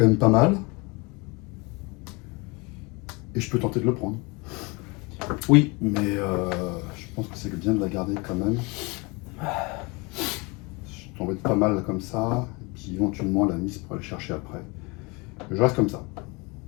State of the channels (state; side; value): quieter; right; 27.7 dB